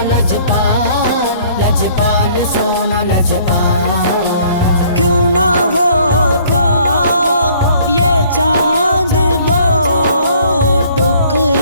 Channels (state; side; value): inverted; both; correlation -0.58